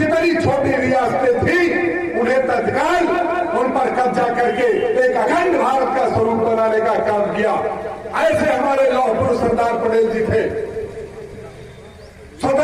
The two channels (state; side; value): identical; both; correlation 1.00